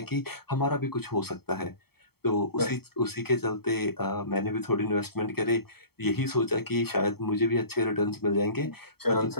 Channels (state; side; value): late; right; 0.96 ms